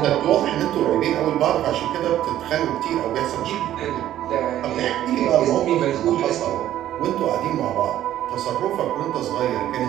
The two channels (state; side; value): quieter; left; 12.5 dB